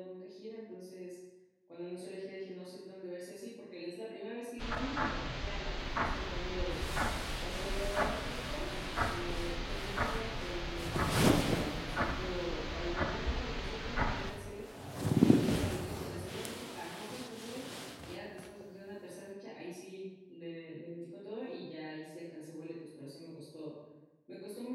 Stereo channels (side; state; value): both; identical; correlation 1.00